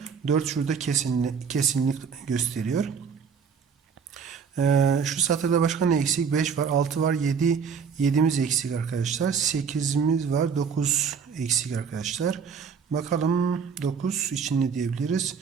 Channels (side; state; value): left; quieter; 6.3 dB